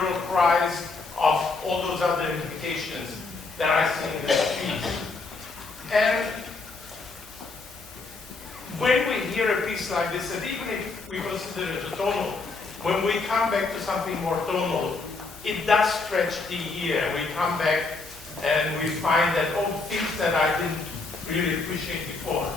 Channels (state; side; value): quieter; right; 3.9 dB